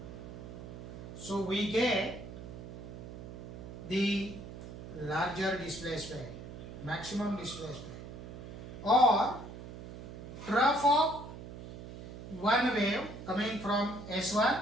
So we get the larger displacement, maximum displacement, or trough of one wave coming from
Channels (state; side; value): noise; right; hum, 12 dB below the sound